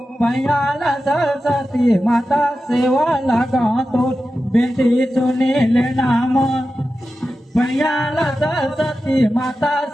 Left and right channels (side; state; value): both; normal; correlation 0.92